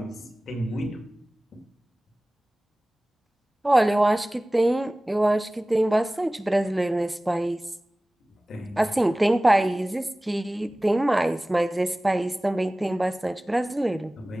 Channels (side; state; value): both; normal; correlation 0.98